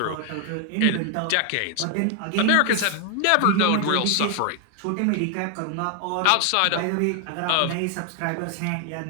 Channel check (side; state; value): both; different; correlation 0.00